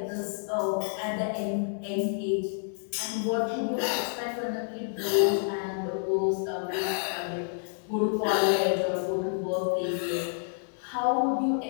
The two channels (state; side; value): silent; right; digital silence